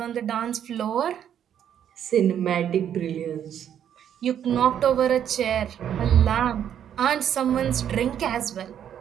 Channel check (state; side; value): quieter; left; 9.5 dB